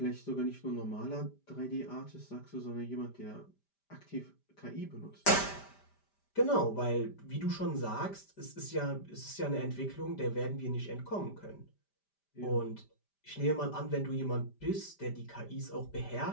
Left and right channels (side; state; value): right; late; 5.0 ms